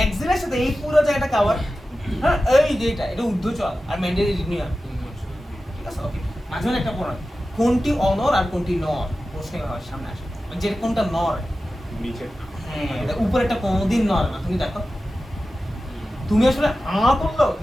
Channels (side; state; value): both; normal; correlation 0.94